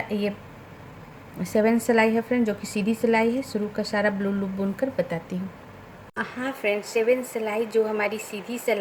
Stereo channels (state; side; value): identical; both; correlation 1.00